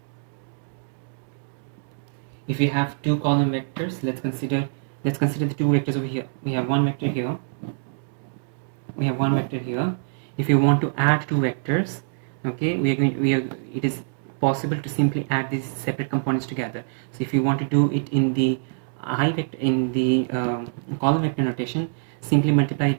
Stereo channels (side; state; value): left; silent; digital silence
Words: if we have two column vectors, let's consider the two vectors over here. We have one vector here. If you want to add two vectors, okay, it is possible to simply add these separate components together. So if you want to do it in the column vector notation, simply multiply